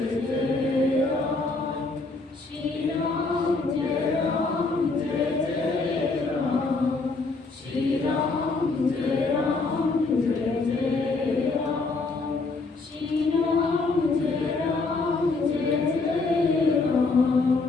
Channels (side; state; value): right; quieter; 3.8 dB